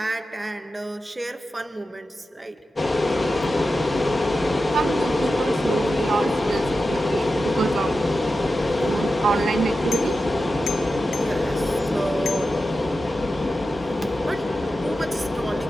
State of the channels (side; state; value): both; normal; correlation 0.91